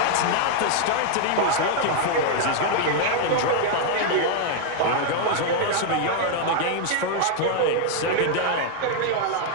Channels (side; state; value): both; different; correlation 0.00